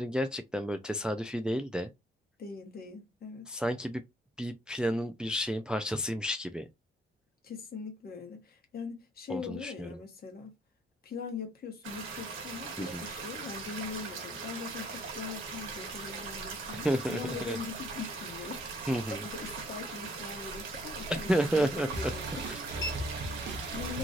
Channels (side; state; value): both; normal; correlation 0.65